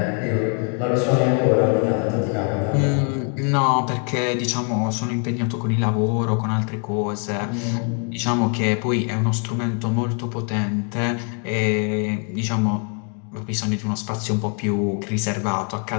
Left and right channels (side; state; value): right; quieter; 40.0 dB